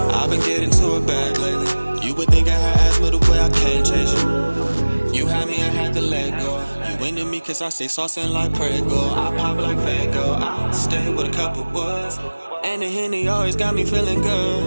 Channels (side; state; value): both; inverted; correlation -1.00